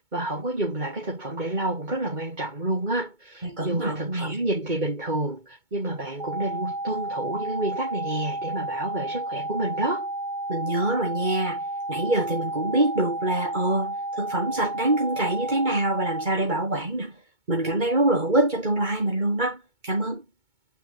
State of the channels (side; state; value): left; late; 2.2 ms